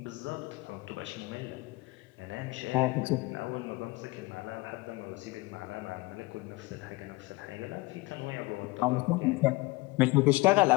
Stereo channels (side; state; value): right; quieter; 22.5 dB